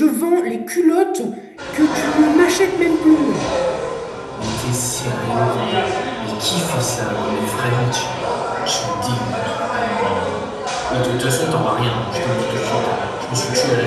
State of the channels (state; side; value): identical; both; correlation 1.00